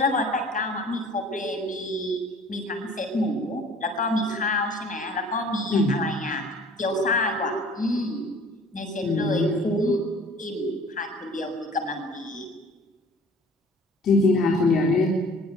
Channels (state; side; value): normal; both; correlation 0.49